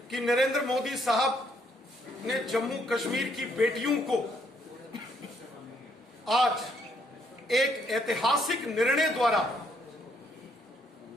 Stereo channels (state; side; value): normal; both; correlation 0.71